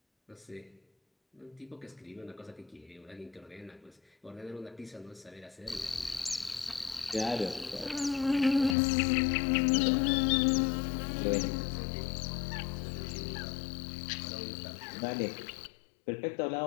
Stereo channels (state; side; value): drops out; right; at 8.8 s